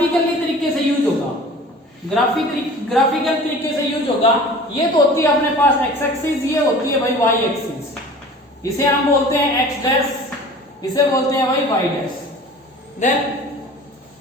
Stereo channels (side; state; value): both; normal; correlation 0.43